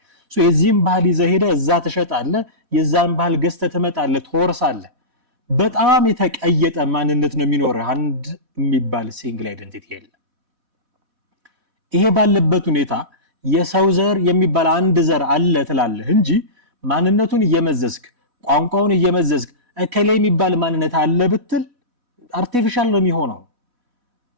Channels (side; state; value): left; late; 4.1 ms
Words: የዚህም ባህል ይዘህ ሄደህ እዛ ትሸጣለህ፣ የዛን ባህል ገዝተህ ትመጣለህ፣ ትወርሳለህ። በጣም የተቀየጠ ማንነት ነው የሚኖርህ። አንድ የሚባል ሲንግል አይደንቲቲ የለም። ይሄ ባለበት ሁኔታ የሰው ዘር የሚባል አንድ ዘር አለ ትላለህ እንጂ ማንነቱን እየመዘዝክ ቋንቋውን እየመዘዝክ እከሌ የሚባል ማንነት አለ ብትል አርቲፊሻል ነው የሚሆነው።